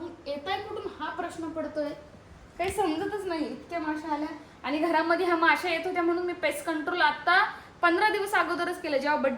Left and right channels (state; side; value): identical; both; correlation 1.00